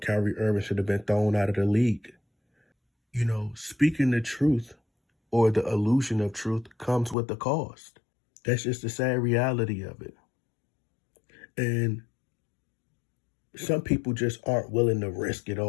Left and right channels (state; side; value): drops out; right; at 7.2 s